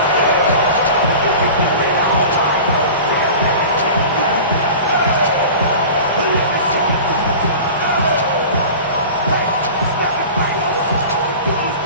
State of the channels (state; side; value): inverted; both; correlation -0.37